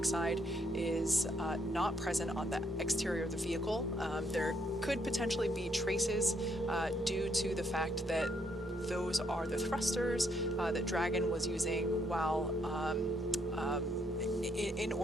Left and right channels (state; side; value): normal; both; correlation 0.72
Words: is not present on the exterior of the vehicle. There could potentially be traces due to the fact that those are the thrusters that Dragon was using while in